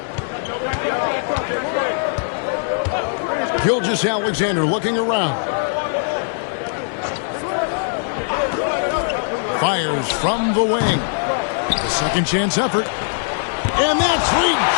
Gilgeous-Alexander looking around. Fires from the wing. The second chance effort. And that's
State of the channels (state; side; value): silent; right; digital silence